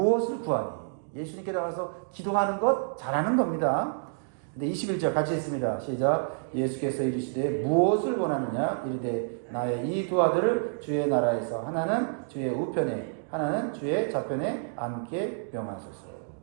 구하니? 예수님께 나와서 기도하는 것 잘하는 겁니다. 근데 21절 같이 읽습니다. 시작. 예수께서 이르시되 무엇을 원하느냐? 이르되 나의 이 두 아들을 주의 나라에서 하나는 주의 우편에 하나는 주의 좌편에 앉게 명하소서.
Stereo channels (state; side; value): silent; left; digital silence